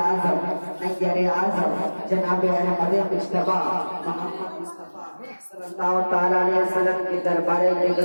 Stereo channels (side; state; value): both; inverted; correlation -1.00